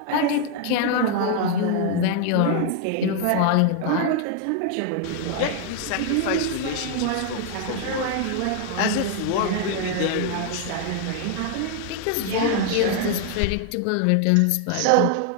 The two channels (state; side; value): different; both; correlation 0.00